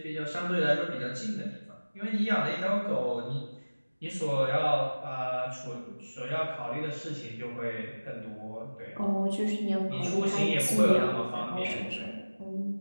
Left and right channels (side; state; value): both; inverted; correlation -1.00